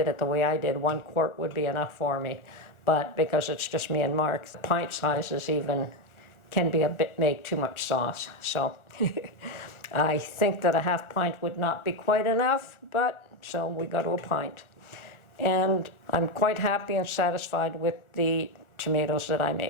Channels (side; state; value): right; late; 1.4 ms